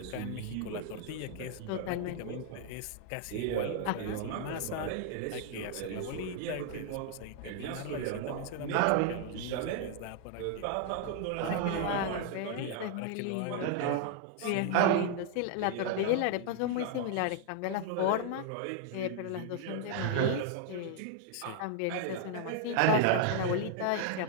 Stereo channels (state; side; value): different; both; correlation 0.00